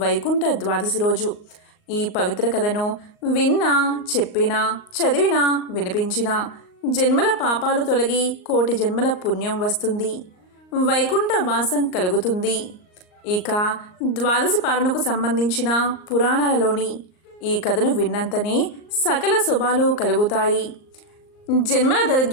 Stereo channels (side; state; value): right; late; 38 ms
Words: వైకుంఠ ద్వాదశి రోజు ఈ పవిత్ర కథను విన్నా, చెప్పినా, చదివినా, వినిపించినా జన్మల పాపాలు తొలగి కోటి జన్మల పుణ్యం వస్తుంది, వైకుంఠ వాసం కలుగుతుంది. ఇక ద్వాదశి పాలనకు సంబంధించిన పురాణాలలోని ఈ కథను విన్నంతనే సకల శుభాలు కలుగుతాయి. జన్మల